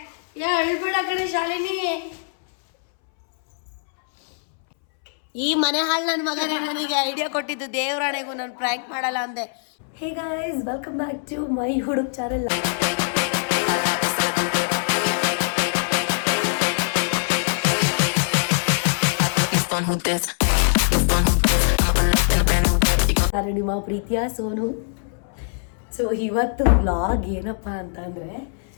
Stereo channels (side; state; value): right; silent; 64 dB below the other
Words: ಅಳ್ಬೇಡ ಕಣೆ ಶಾಲಿನಿ. ಈ ಮನೆ ಹಾಳು ನನ್ನ ಮಗನೇ ನನಗೆ ಐಡಿಯಾ ಕೊಟ್ಟಿದ್ದು. ದೇವರಾಣೆಗೂ ನಾನು ಪ್ರ್ಯಾಂಕ್ ಮಾಡಲ್ಲ ಅಂದೆ. Hey guys, welcome back to my ಹುಡುಗ ಚಾನೆಲ್. ನಾನು ನಿಮ್ಮ ಪ್ರೀತಿಯ ಸೋನು. ಸೊ ಇವತ್ತು ವ್ಲಾಗ್ ಏನಪ್ಪ ಅಂತಂದರೆ,